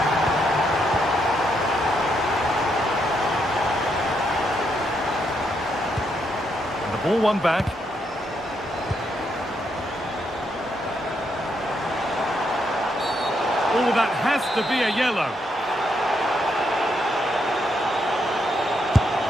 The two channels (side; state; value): both; normal; correlation 0.78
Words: Ball one back. Oh, that has to be a yellow.